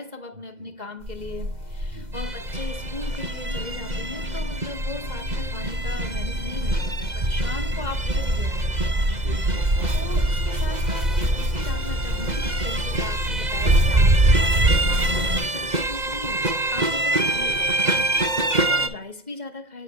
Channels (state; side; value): late; left; 2.0 ms